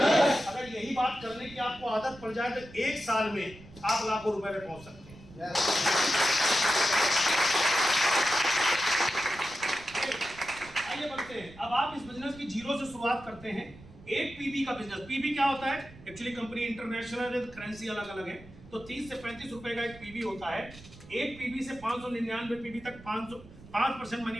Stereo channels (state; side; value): noise; right; rumble, 19 dB below the sound